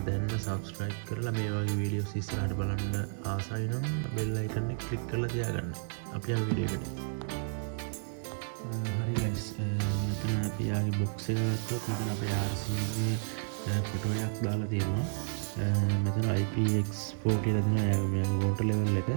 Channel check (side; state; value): left; silent; digital silence